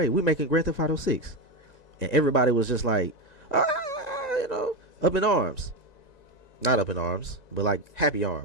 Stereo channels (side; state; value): right; late; 1.9 ms